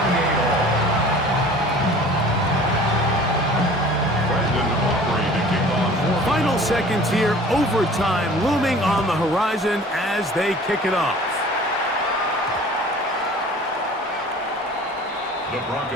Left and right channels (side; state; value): both; normal; correlation 0.46